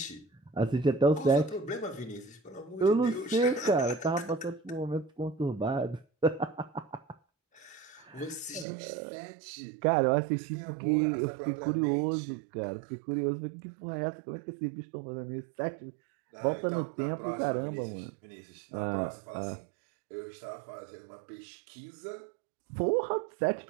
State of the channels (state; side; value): drops out; left; at 8.7 s